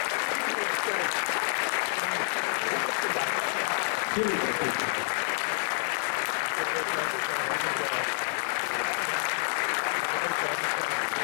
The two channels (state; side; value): silent; right; digital silence